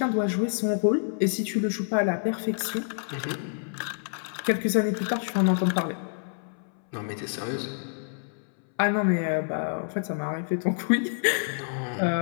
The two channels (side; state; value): right; silent; 60 dB below the other